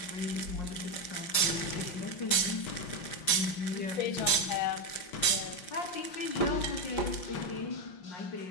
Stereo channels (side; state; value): right; late; 5.6 ms